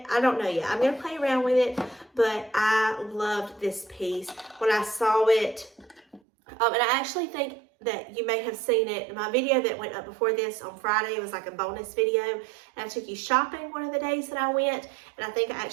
I don't know yet. I'm going to play around with it, but I loved this piece when I saw it. And I actually think that you may have seen it in my video that went up before this on Friday. It was like a bonus video, and I took you shopping one of the days that I went, and I think I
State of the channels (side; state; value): left; drops out; at 6.2 s